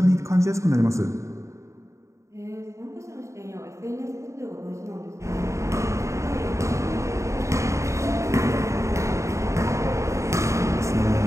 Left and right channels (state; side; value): late; left; 0.14 ms